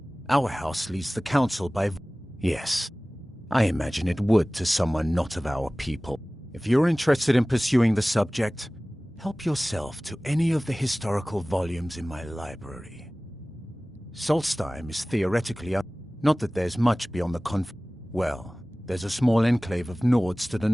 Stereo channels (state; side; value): normal; both; correlation 0.98